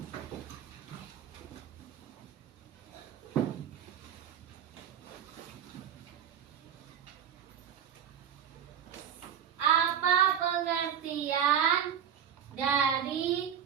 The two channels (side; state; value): left; quieter; 8.8 dB